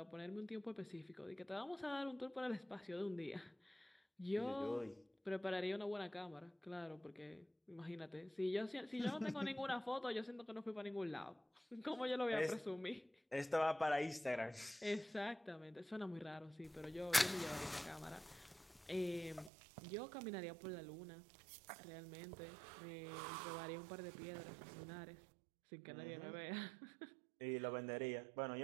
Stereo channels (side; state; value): left; drops out; at 19.5 s